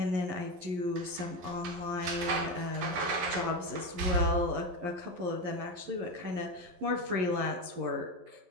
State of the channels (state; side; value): late; left; 11 ms